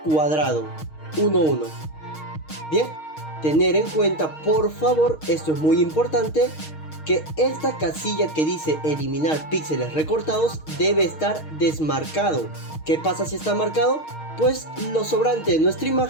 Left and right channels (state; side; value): late; right; 6.4 ms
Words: cuadrado, 1:1. Bien, tener en cuenta, por favor, esto es muy importante, que esta casilla que dice eliminar píxeles recortados debe estar desmarcado. ¿Qué pasa si está marcado? Pues lo sobrante de nuestra